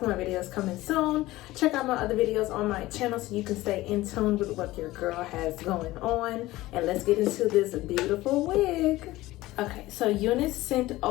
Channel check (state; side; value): quieter; right; 17.8 dB